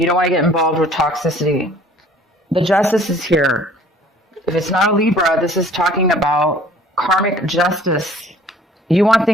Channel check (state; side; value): normal; both; correlation 0.52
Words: don't want to get involved with toxicity. The Justice is here. If it's not a Libra, this is talking about karmic justice. You want